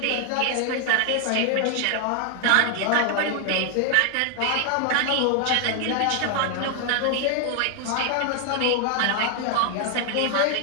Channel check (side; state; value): both; different; correlation 0.00